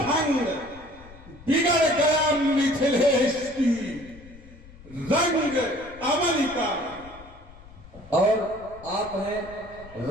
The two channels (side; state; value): left; noise; rumble, 20 dB below the sound